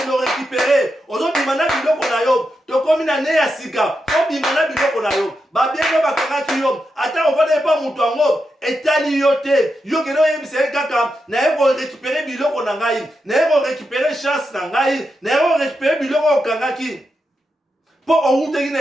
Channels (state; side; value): normal; both; correlation 0.86